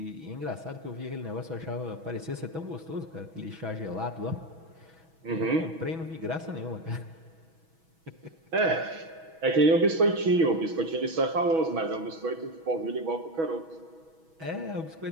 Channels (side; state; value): left; late; 6.2 ms